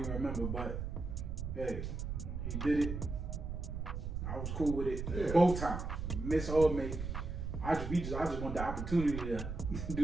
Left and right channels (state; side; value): noise; right; rumble, 4 dB below the sound